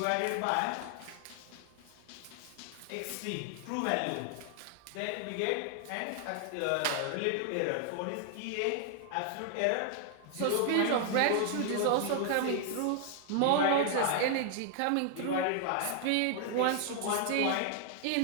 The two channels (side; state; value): both; different; correlation 0.00